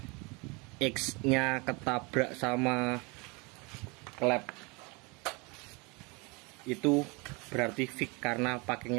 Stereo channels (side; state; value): left; quieter; 28.6 dB